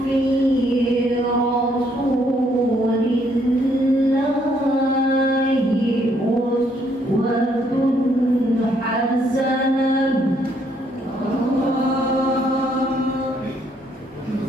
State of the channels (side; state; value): both; normal; correlation 0.70